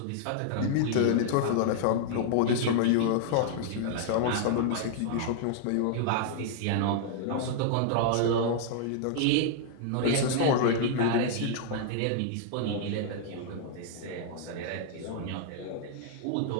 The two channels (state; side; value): different; both; correlation -0.01